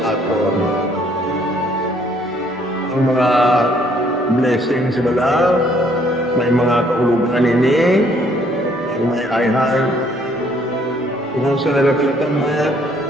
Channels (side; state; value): both; normal; correlation 0.64